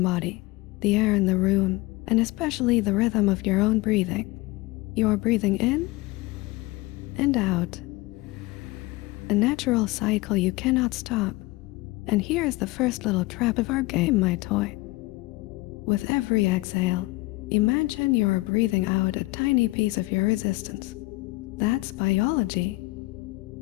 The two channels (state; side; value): quieter; right; 21.4 dB